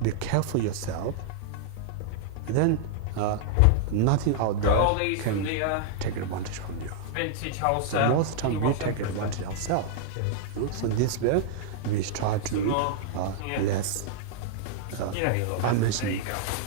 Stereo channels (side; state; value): both; different; correlation -0.01